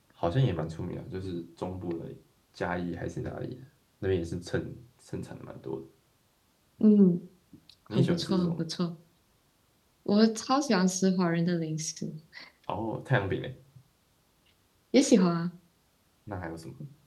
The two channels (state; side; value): identical; both; correlation 1.00